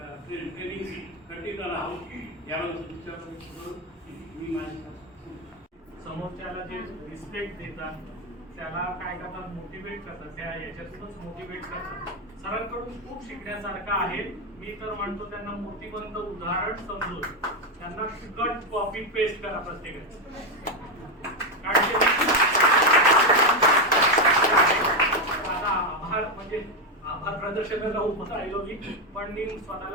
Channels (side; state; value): both; normal; correlation 0.06